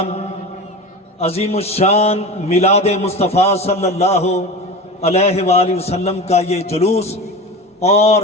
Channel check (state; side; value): normal; both; correlation 0.29